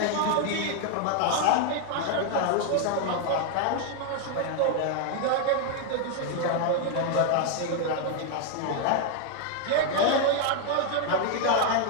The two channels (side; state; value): both; different; correlation 0.00